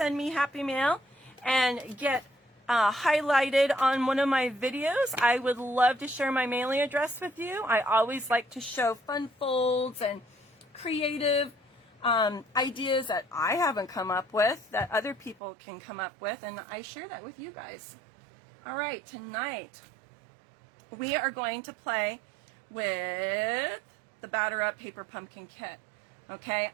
me Happy Mail and get highlighted on one of my videos, I would love to share my mailing address with you. I always like to show fun folds and creative ideas that I haven't come up with, that other people can come up with, and I share that with you guys. All right, tonight we are going to play with the Batter Up Paper Pumpkin Kit. Okay,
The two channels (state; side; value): drops out; left; at 15.4 s